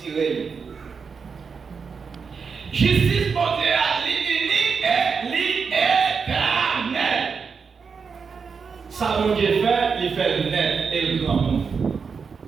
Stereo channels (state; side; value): quieter; left; 5.6 dB